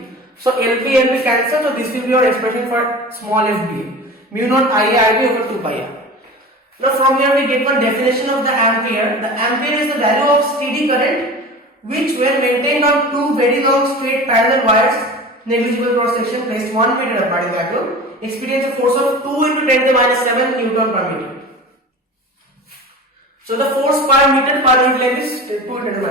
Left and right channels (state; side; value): normal; both; correlation 0.35